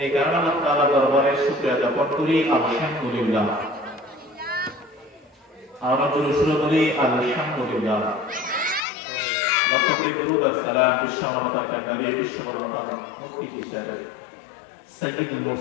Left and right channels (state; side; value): drops out; right; at 8.8 s